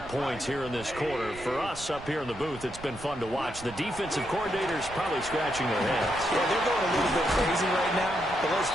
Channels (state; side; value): noise; right; rumble, 16 dB below the sound